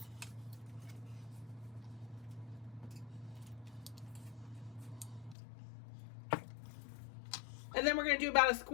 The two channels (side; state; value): right; drops out; at 5.4 s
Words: And then we're going to do about a